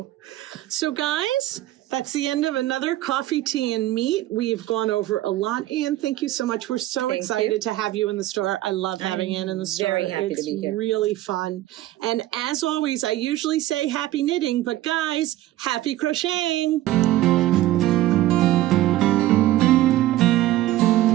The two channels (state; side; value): quieter; left; 15.3 dB